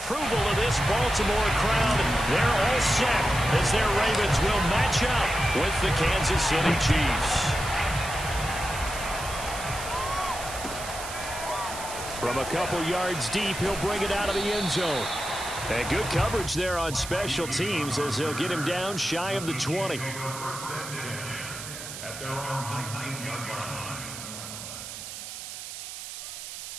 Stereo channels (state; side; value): noise; right; hiss, 9 dB below the sound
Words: of this Baltimore crowd. They're all set as their Ravens will match up with the Kansas City Chiefs. From a couple yards deep, he'll bring it out of the end zone. And good coverage there on special teams as they'll get him down shy of the 20. At their own 19-yard line.